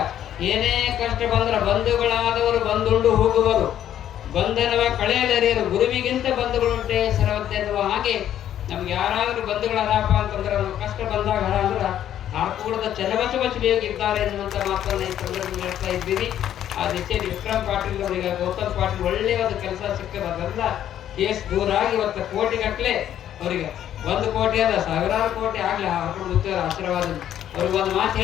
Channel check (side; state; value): right; quieter; 10.9 dB